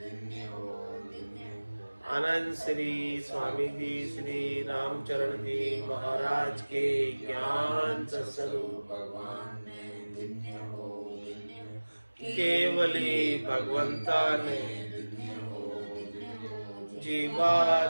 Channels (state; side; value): inverted; both; correlation -1.00